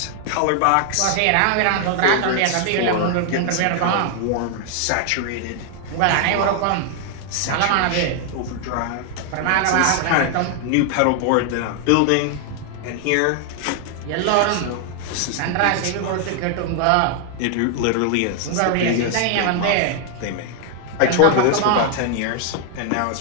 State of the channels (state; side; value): different; both; correlation 0.00